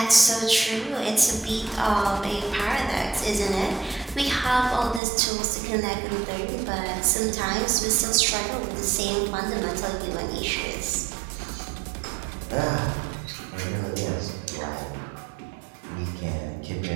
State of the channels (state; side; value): drops out; left; at 5.0 s